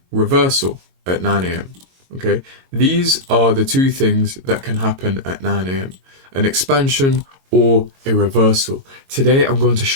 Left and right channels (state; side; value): late; left; 22 ms